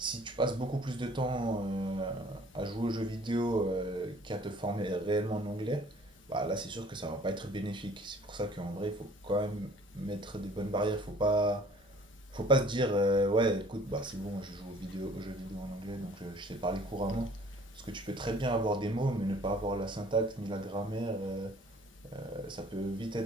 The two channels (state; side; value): normal; both; correlation 0.53